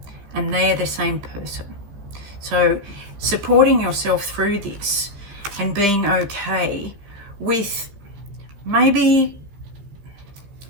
and they're the same person. So supporting yourself through this and being okay with maybe,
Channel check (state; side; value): late; left; 15 ms